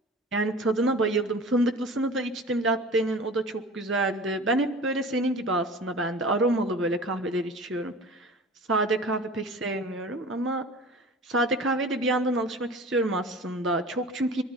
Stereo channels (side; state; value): both; normal; correlation 0.39